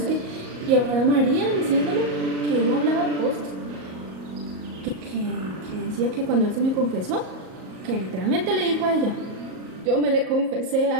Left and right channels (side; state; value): left; late; 38 ms